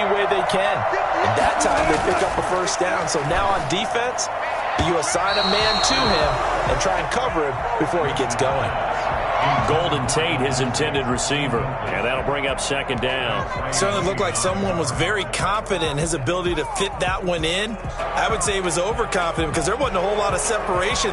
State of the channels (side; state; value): both; identical; correlation 1.00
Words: way they can. And that time they pick up a first down. So now on defense, you assign a man to him and try and cover him before he gets going. Golden Tate, his intended receiver. And that'll bring up second down. Certainly looked like someone was very confident in his ability to fit that one in. I would say he was overconfident because there wasn't a whole lot of